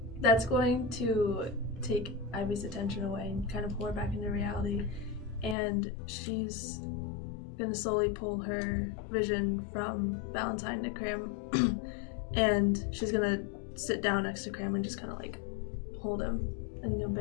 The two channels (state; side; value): drops out; right; at 5.6 s